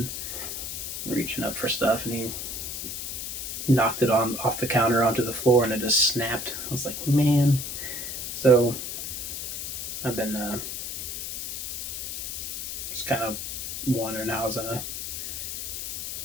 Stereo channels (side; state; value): left; noise; hiss, 5 dB below the sound